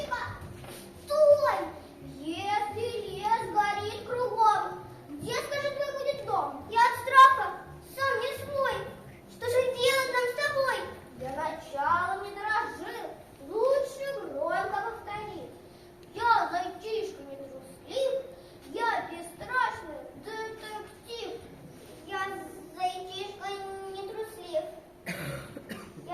Стой! Если лес горит кругом, где, скажи, твой будет дом? Я от страха сам не свой. Что же делать нам с тобой? Для начала не дрожи. Лучше громко повтори. Я зайчишка не труслив. Я бесстрашный детектив. Я зайчишка не труслив.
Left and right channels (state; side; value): identical; both; correlation 1.00